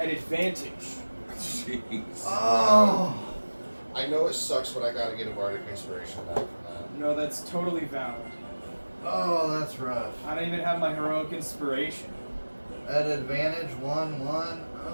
advantage. Jeez. Oh! I know it sucks, but I gotta get a bardic inspiration back from that. No, that's totally valid. Oh, that's rough. I don't even have my heroic inspiration. At advantage, 1/1.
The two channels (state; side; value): inverted; both; correlation -1.00